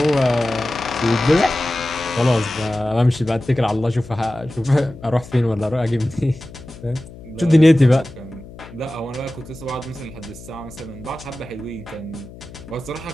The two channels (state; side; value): noise; left; hum, 17 dB below the sound